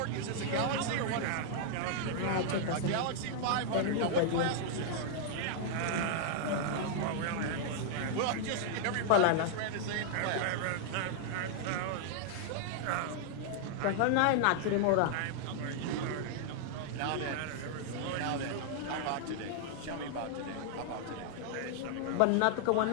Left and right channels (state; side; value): different; both; correlation -0.01